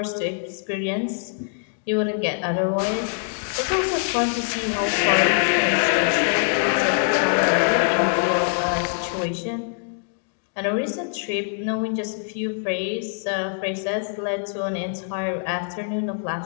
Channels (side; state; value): right; silent; digital silence